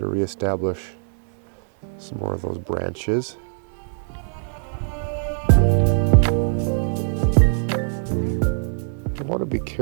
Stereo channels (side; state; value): left; silent; 61 dB below the other